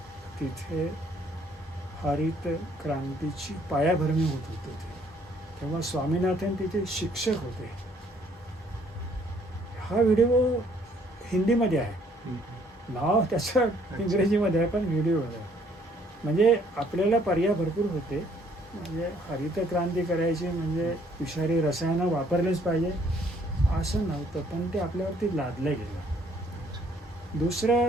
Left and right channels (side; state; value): both; normal; correlation 0.63